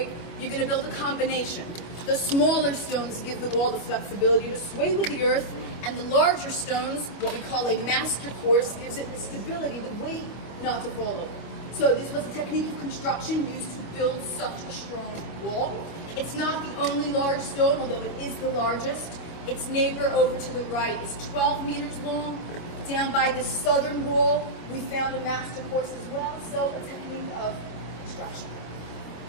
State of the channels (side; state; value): right; late; 25 ms